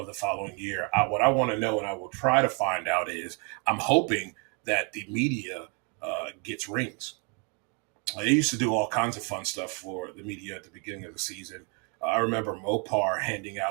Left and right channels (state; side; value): quieter; left; 35.4 dB